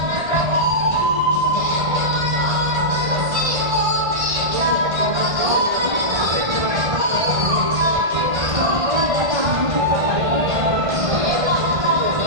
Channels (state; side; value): late; left; 1.5 ms